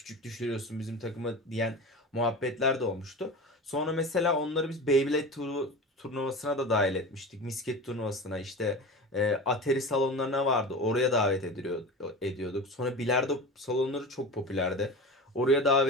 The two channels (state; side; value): normal; both; correlation 0.31